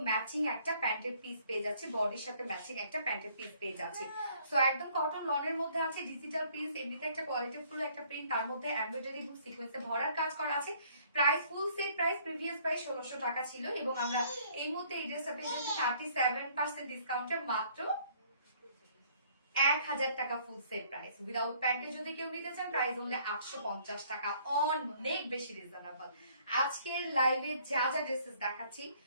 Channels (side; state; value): both; inverted; correlation -0.60